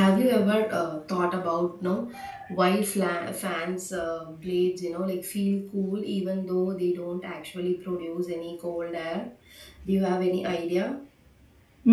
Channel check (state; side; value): identical; both; correlation 1.00